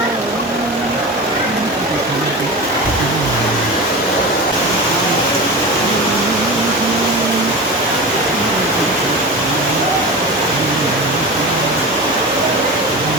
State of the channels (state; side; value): normal; both; correlation 0.28